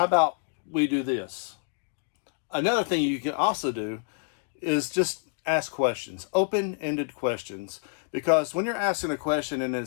about we do this? Another thing you can also do is just ask questions, open-ended questions. Because when you're asking a question and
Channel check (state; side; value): silent; right; 57 dB below the other